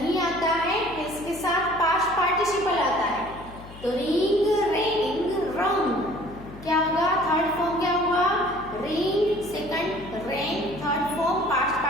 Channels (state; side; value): noise; left; hum, 17 dB below the sound